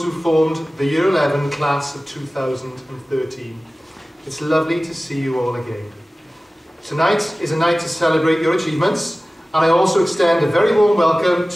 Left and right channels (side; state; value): both; normal; correlation 0.97